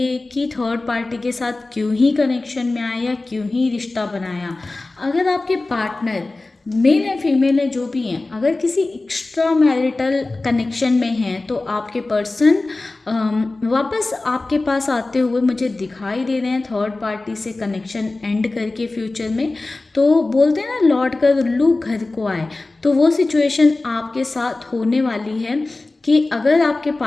कि थर्ड पार्टी के साथ क्यों ही कनेक्शन में आया, क्यों ही रिश्ता बनाया। अगर आपके पार्टनर मेल है फीमेल है जो भी हैं, अगर किसी एक्स्ट्रा मैरिटल कनेक्शन में हैं तो आपके पर्सन वापस आपके पास आते हुए मुझे दिखाई दे रहे हैं, थर्ड पार्टी से कनेक्शन एंड करके फ्यूचर में। तो बोलते हैं ना, लौट कर उल्लू घर को आए, तो वो सिचुएशन आपके साथ होने वाली है कि अगर आपके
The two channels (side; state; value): right; quieter; 3.2 dB